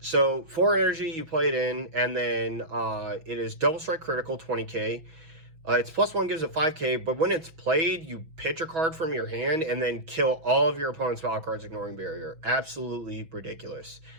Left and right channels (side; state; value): left; late; 6.1 ms